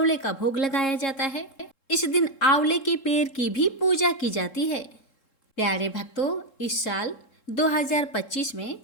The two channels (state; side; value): late; right; 3.7 ms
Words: का भोग लगाया जाता है। इस दिन आंवले के पेड़ की भी पूजा की जाती है। प्यारे भक्तों, इस साल 2025 में